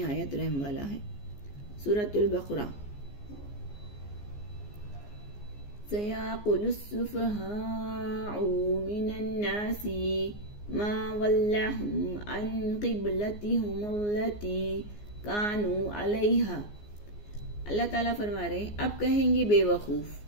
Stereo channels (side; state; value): right; late; 14 ms